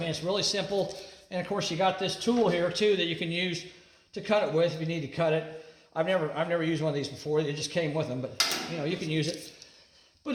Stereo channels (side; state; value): both; identical; correlation 1.00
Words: it's really simple. And of course, you got this tool here too that you can use to cut it with if you need to cut it. I've never used one of these before. It just came with them, but you can use it. But